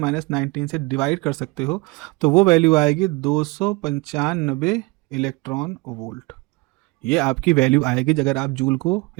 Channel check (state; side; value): quieter; left; 24.9 dB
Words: से डिवाइड कर सकते हो, तो वो वैल्यू आएगी 295 इलेक्ट्रॉन वोल्ट। ये आपकी वैल्यू आएगी अगर आप जूल को